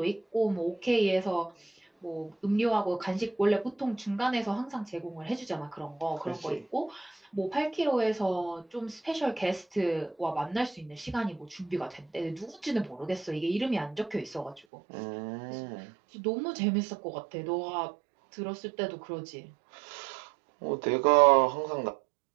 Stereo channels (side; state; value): left; drops out; at 14.6 s